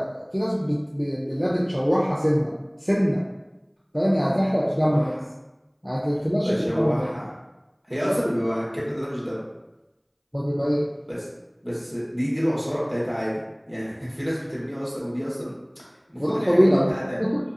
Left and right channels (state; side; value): identical; both; correlation 1.00